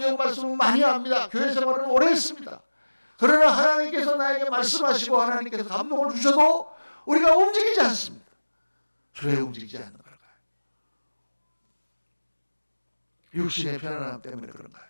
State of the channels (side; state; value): both; inverted; correlation -1.00